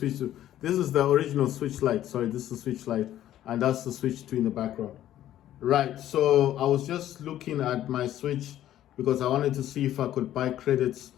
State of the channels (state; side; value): quieter; right; 12.5 dB